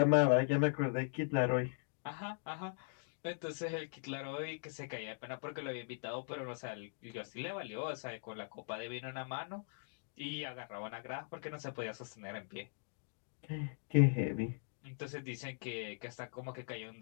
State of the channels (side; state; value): right; silent; digital silence